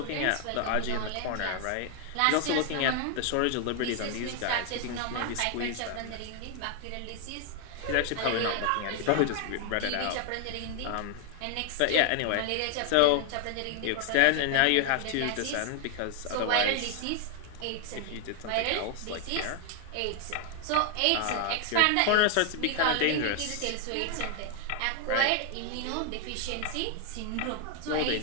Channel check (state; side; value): different; both; correlation 0.00